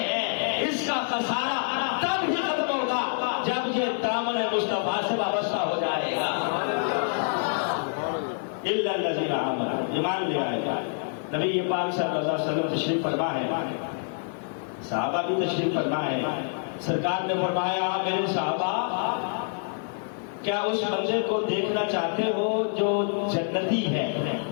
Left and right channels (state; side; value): silent; right; 60 dB below the other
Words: ہے۔ اس کا خسارہ تب ہی ختم ہوگا جب یہ دامن مصطفیٰ سے وابستہ ہو جائے گا۔ الا الذین آمنوا، ایمان لے آئے گا۔ نبی پاک صلی اللہ علیہ وسلم تشریف فرما ہے، صحابہ بھی تشریف فرما ہے، سرکار نے فرمایا میرے صحابہ کیا اس بندے کو دیکھنا چاہتے ہو جو جنتی ہے،